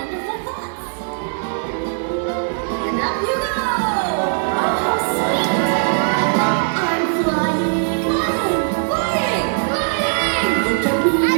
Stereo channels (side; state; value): left; silent; 66 dB below the other